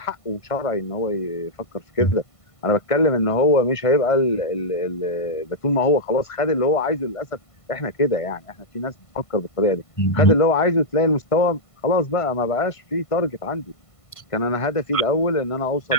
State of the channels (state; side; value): late; right; 1.5 ms